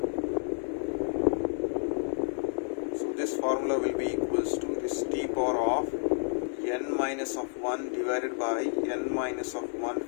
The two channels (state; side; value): silent; right; digital silence